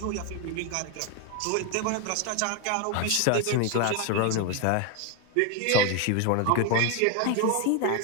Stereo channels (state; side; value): different; both; correlation 0.01